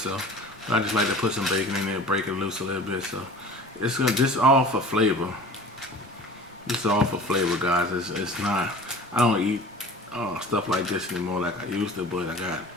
I just like to put some bacon in there, break it loose a little bit. So this is all for flavor. This is all for flavor, guys. It's not. I don't eat stuff like this anymore like I used to, but I got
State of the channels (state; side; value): normal; both; correlation 0.42